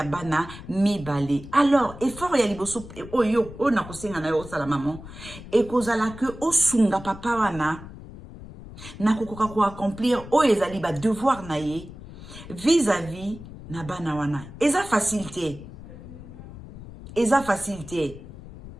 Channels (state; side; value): noise; left; rumble, 15 dB below the sound